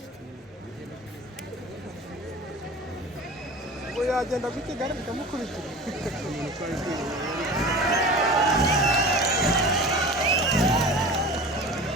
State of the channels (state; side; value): normal; both; correlation 0.36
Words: ngo yagenda ku Kigali bikamukurikira